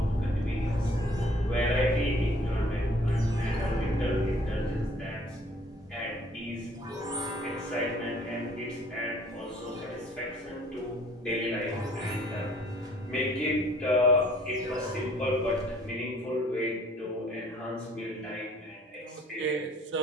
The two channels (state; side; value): normal; both; correlation 0.57